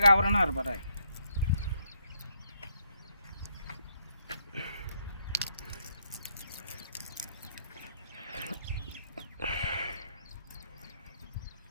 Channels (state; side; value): inverted; both; correlation -0.73